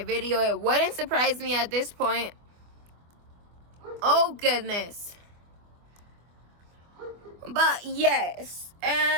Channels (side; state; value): left; late; 24 ms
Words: video. It wouldn't surprise me at this point. Oh goodness. But yes,